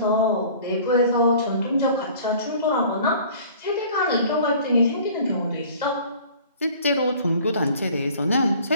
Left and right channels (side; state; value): both; inverted; correlation -0.48